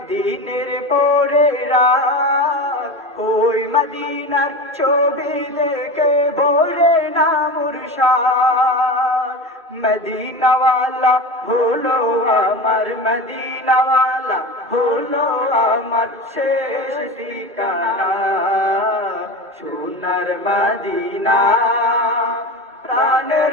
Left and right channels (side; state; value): both; normal; correlation 0.26